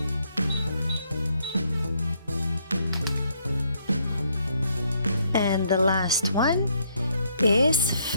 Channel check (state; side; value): inverted; both; correlation -0.71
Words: And the last one is